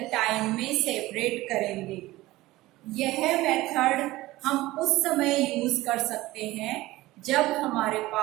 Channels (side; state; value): left; quieter; 18.0 dB